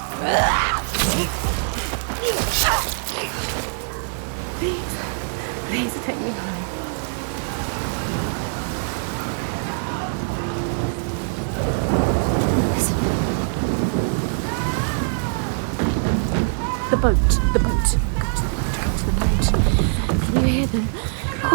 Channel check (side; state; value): left; silent; 56 dB below the other